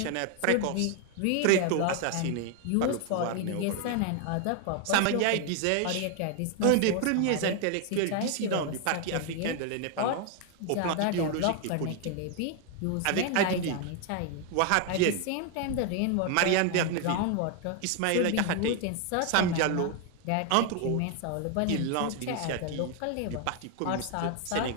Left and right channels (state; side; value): different; both; correlation 0.01